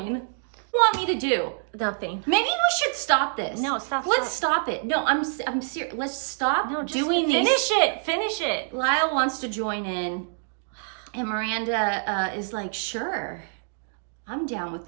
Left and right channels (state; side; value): silent; left; digital silence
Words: What do you want me to do? Nothing. Maybe we should stop this. No, stop. Let's stop it. No, I'm serious. Let's stop doing this. Finish it. Lyle wants to join in, and Miranda is like, sure, I'm down with